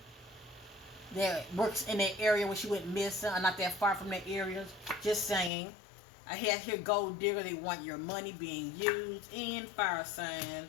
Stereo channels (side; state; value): right; drops out; at 5.5 s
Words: that works in that area where she went missing or not that far from that area? Just saying. I have here gold digger. They want your money being used. And fire sign.